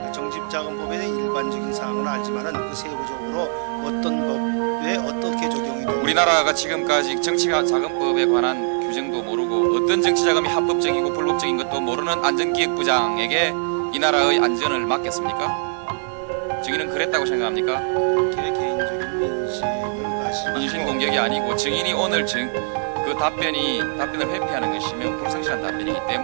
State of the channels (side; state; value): left; silent; digital silence